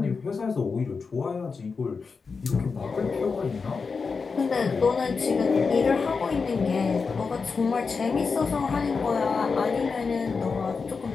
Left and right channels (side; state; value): right; quieter; 4.9 dB